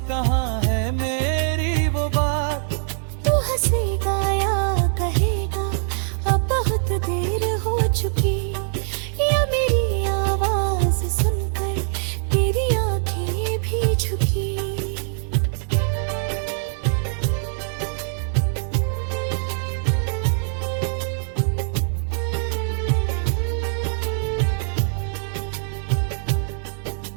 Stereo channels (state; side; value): silent; left; 62 dB below the other